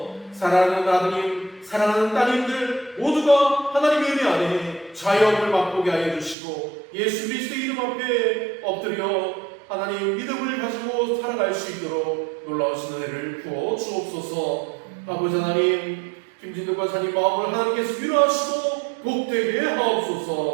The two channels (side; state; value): left; drops out; at 6.4 s